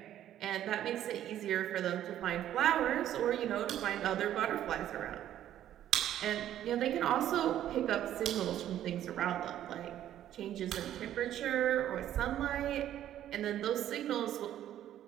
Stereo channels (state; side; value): quieter; left; 11.7 dB